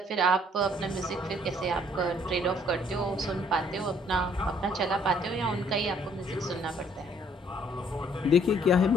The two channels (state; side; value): normal; both; correlation 0.63